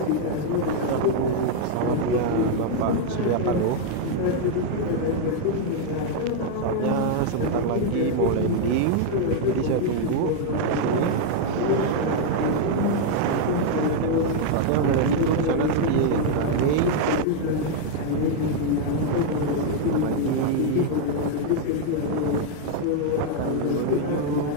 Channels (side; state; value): both; different; correlation 0.00